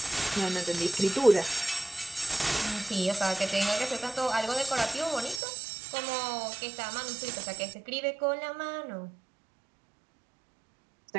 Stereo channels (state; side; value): drops out; left; at 5.4 s